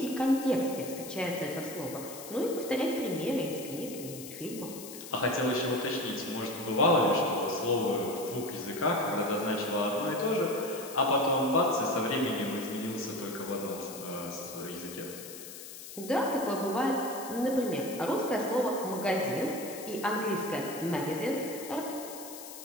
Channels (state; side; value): noise; left; hiss, 12 dB below the sound